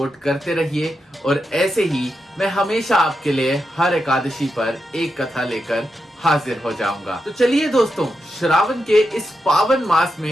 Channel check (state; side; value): normal; both; correlation 0.87